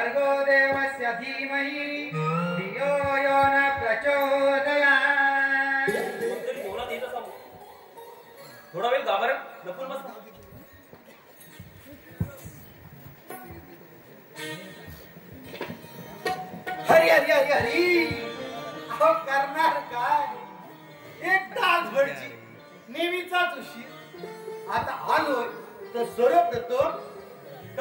देवस्य धीमहि धियो यो न प्रचोदयात्. कोणतरी जेवणात येत असावं. थोडा वेळ गाभाऱ्यात लपून बसला. हरी हरी हरी हरी अहो करणार काय एक तासभरची नेहमीचाच उशीर. आता आलोय तर सर्वप्रथम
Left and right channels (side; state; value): both; identical; correlation 1.00